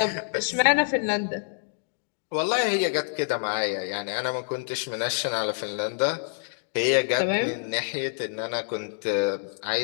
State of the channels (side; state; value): right; silent; digital silence